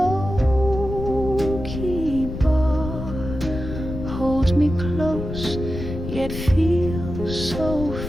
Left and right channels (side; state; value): left; noise; rumble, 7 dB below the sound